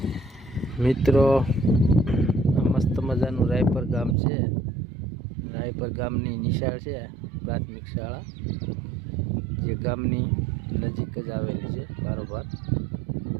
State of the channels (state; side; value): drops out; left; at 4.2 s